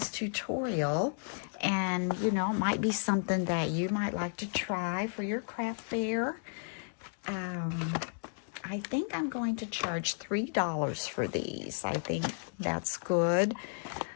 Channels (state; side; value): silent; right; digital silence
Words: tutorial. And, you know, it might be something that you might like to try for your craft fair. I think I'm going to charge $3 for these. I think that's good.